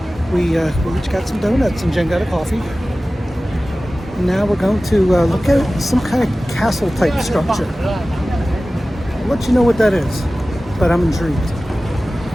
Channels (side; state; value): both; normal; correlation 0.96